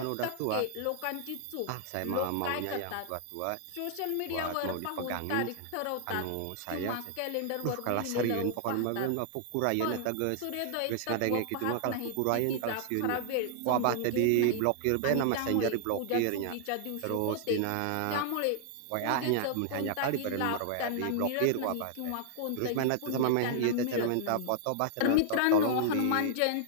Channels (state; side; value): different; both; correlation -0.01